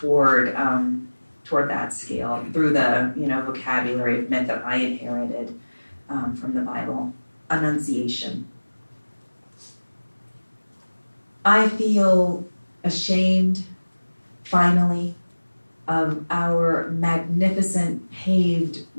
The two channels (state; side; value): inverted; both; correlation -1.00